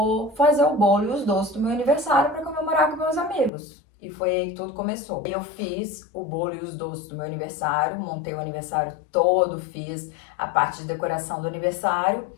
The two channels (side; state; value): right; drops out; at 3.5 s